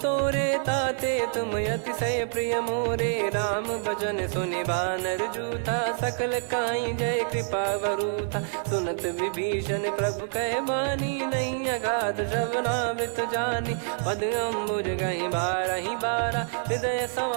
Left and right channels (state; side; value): silent; left; digital silence